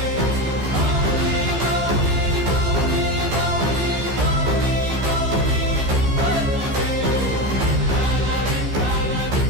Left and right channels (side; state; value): left; late; 15 ms